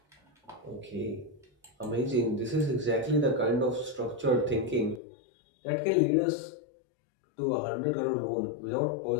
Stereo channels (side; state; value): right; drops out; at 5.0 s